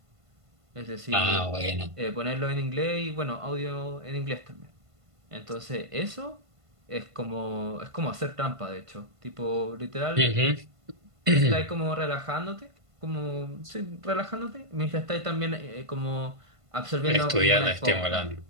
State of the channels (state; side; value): late; left; 1.5 ms